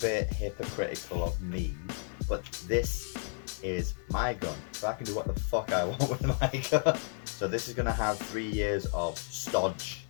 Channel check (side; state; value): right; silent; 56 dB below the other